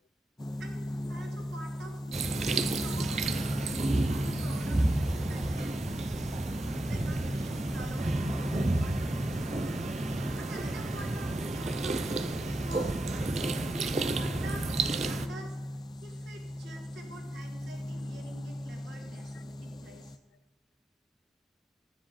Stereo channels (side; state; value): both; normal; correlation 0.86